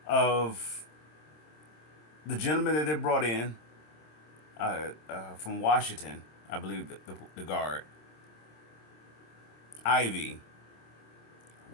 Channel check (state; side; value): late; right; 26 ms